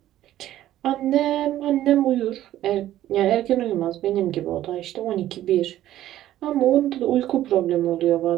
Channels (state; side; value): quieter; left; 13.3 dB